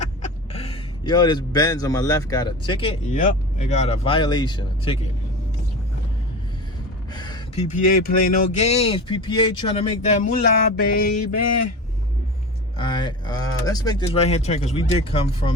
Yo, this Benz on my left got a ticket. Yep, it got a violation, a ticket. PPA play no games. PPA trying to make that moolah, baby. Alright, let's make this right hand turn, because we did come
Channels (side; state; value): both; normal; correlation 0.30